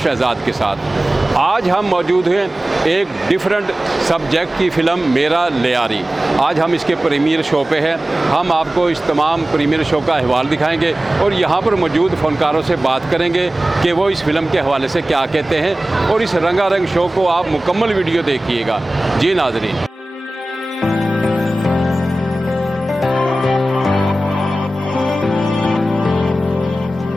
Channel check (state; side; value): normal; both; correlation 0.96